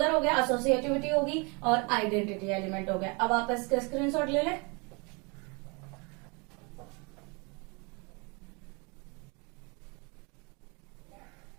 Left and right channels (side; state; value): left; quieter; 31.0 dB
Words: हो गया, एसोसिएटिविटी होगी और आइडेंटिटी एलिमेंट हो गया। अब आप इसका स्क्रीनशॉट ले लें।